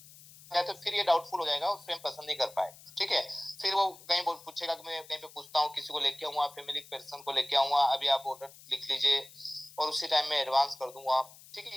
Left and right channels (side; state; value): left; noise; hiss, 21 dB below the sound